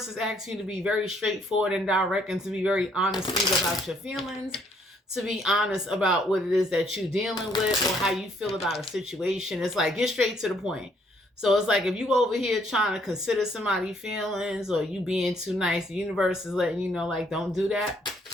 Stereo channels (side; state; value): both; normal; correlation 0.67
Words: is asking you to be very straightforward and direct and to be very honest about your feelings, to be honest about what it is that you're dealing with or how you feel about a situation. It's like, get straight to the point. So it's like if you over here trying to consider somebody's feelings or you being too nice, the universe is letting you know, like, don't do that.